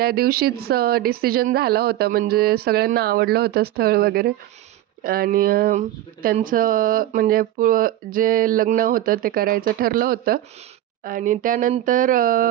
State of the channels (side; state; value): left; quieter; 13.6 dB